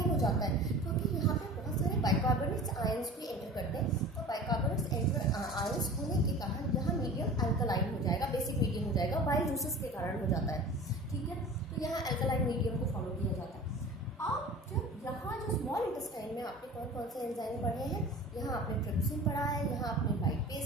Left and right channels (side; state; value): both; normal; correlation 0.39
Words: हो जाता है, क्योंकि यहाँ पे बहुत सारे बाइकार्बोनेट्स आयंस भी एंटर करते हैं। तो बाइकार्बोनेट्स आयंस होने के कारण यहाँ मीडियम एल्कलाइन हो जाएगा, बेसिक मीडियम हो जाएगा, बाइल जूसेस के कारण हो जाता है। ठीक है, तो यहाँ एल्कलाइन मीडियम को फॉलो किया जाता है। अब जब यहाँ जो स्मॉल इंटेस्टाइन में आपने कौन कौन से एंजाइम पढ़े हैं, यहाँ आपने ट्रिप्सिन पढ़ा है, यहाँ आपने